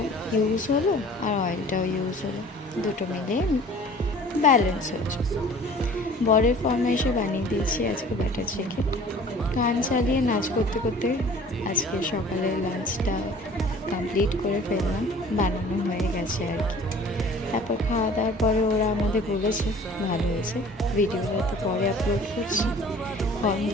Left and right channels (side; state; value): both; normal; correlation 0.48